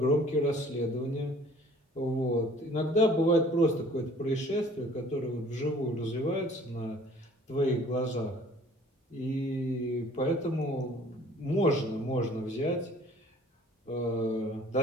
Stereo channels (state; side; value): normal; both; correlation 0.53